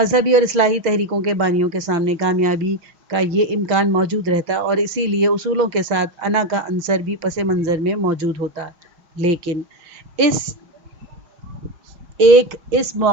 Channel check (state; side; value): late; left; 5.6 ms